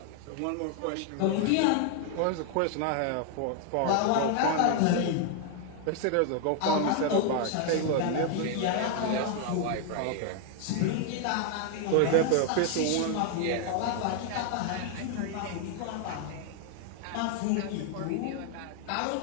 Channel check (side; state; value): both; different; correlation 0.00